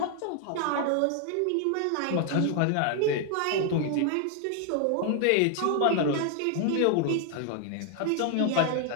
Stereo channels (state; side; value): different; both; correlation 0.00